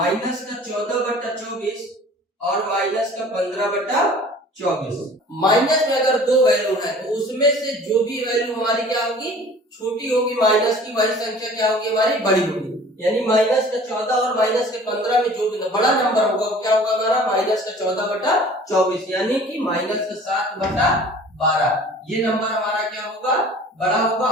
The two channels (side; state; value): both; normal; correlation 0.47